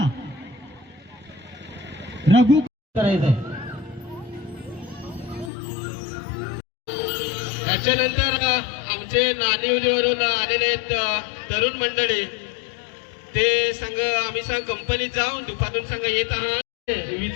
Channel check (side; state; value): right; drops out; at 5.5 s